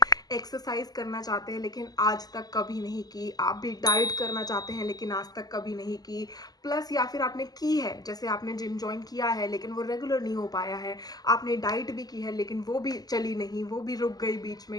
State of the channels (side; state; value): right; late; 0.19 ms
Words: एक्सरसाइज करना चाहते हैं लेकिन आज तक कभी नहीं की, आप भी डाइट करना चाहते हैं लेकिन आज तक कभी नहीं की, प्लस या फिर आपने की है, जैसे आपने जिम ज्वाइन किया है लेकिन वो रेगुलर नहीं हो पाया है, आपने डाइट भी की है लेकिन वो भी चली नहीं, वो भी रुक गई बीच